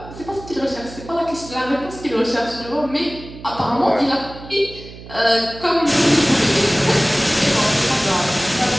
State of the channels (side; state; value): right; noise; hum, 16 dB below the sound